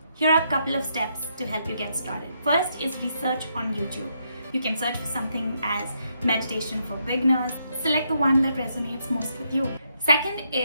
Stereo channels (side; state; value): both; inverted; correlation -0.77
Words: Here are a couple of steps to help you get started. First is research on YouTube. You can search for something as meditation for beginners. Select the one that resonates most with you. Second